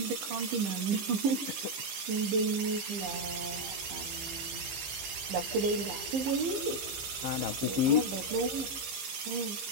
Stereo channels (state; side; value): late; left; 15 ms